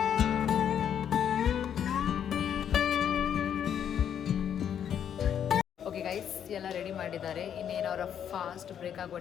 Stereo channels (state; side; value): quieter; right; 9.0 dB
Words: ಗೈಸ್ ಎಲ್ಲ ರೆಡಿ ಮಾಡಿದ್ದಾರೆ. ಇನ್ನೇನು ಅವರ ಫಾಸ್ಟ್ ಬ್ರೇಕ್ ಆಗುವ